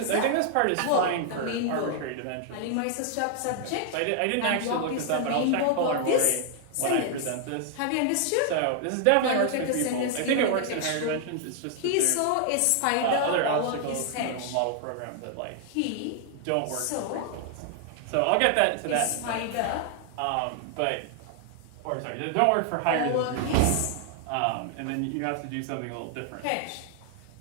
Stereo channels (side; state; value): both; different; correlation 0.00